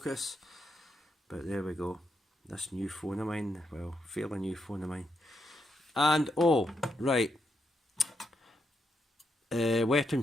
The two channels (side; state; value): both; normal; correlation 0.81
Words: But there we go. This new phone of mine, well, fairly new phone of mine. And, oh, right. Weapon